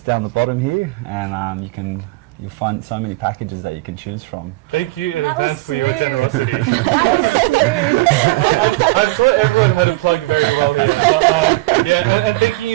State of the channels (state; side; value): quieter; left; 21.2 dB